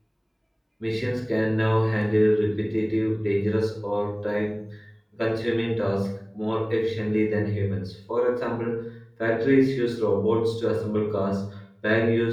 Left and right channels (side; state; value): both; identical; correlation 1.00